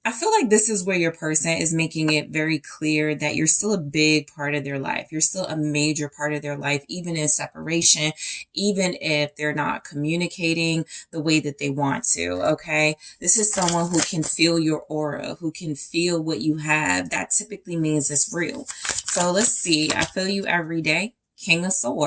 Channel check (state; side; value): identical; both; correlation 1.00